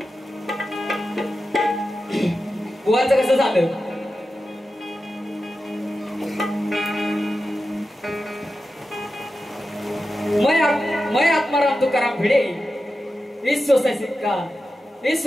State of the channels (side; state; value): both; normal; correlation 0.92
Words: बुवाचं कसं झालं. मैं आत्माराम तुकाराम भिडे इस